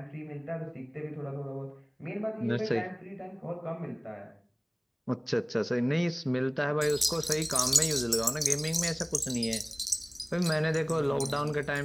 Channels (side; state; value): both; identical; correlation 1.00